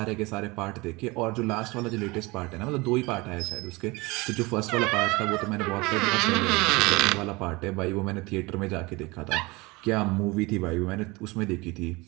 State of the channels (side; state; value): left; quieter; 24.0 dB